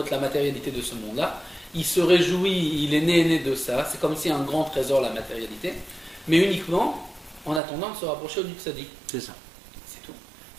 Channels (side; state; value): left; drops out; at 7.6 s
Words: la matérialité de ce monde-là. Il se réjouit, il est né de ça. C'est comme si un grand trésor, la matérialité. Mais uniquement en attendant de se rapprocher du tzaddik. C'est ça. C'est tout.